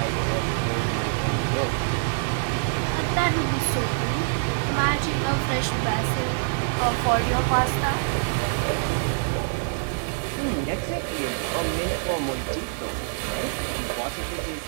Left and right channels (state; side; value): silent; left; 59 dB below the other